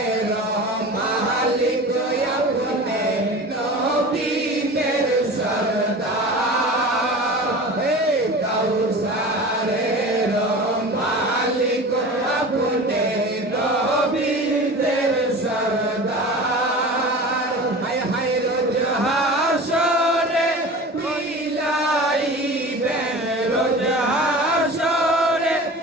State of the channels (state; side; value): normal; both; correlation 0.35